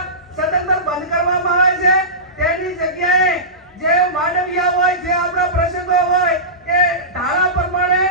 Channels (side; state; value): both; normal; correlation -0.20